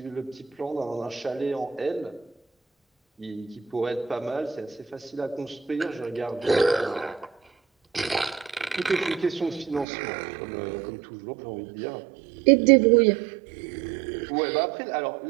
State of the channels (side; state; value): left; drops out; at 9.9 s